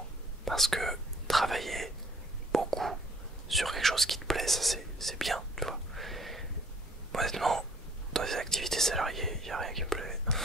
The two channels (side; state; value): both; normal; correlation 0.59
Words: Parce que travailler beaucoup sur quelque chose qui te plaît, ça c'est bien, tu vois. Honnêtement, dans les activités salariées, il n'y a rien qui me plaît.